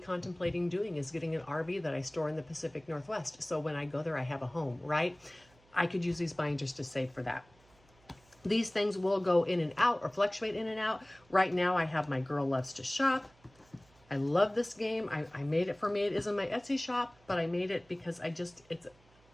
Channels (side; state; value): right; noise; hum, 30 dB below the sound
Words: doing is getting an RV that I store in the Pacific Northwest. So when I go there, I have a home, right? I could use these binders to save for that. These things will go in and out or fluctuate in and out. Right now I have my Girl Loves to Shop. I love this game. I made it for me. It is in my Etsy shop, but I made it because